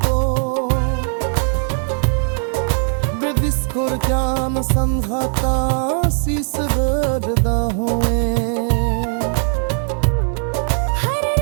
बेदिस्कुर जान संघाता शीस गर्दा हुए। हर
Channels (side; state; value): left; silent; 59 dB below the other